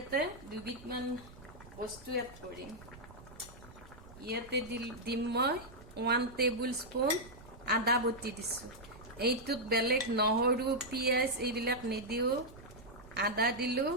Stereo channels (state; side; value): noise; right; rumble, 19 dB below the sound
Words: দুবিধমান বস্তু এড কৰিম ইয়াতে দিম মই 1 টেবুল স্পুন আদা বটি দিছো এইটোত বেলেগ নহৰু পিয়াজ এইবিলাক নিদিও আদা দিলো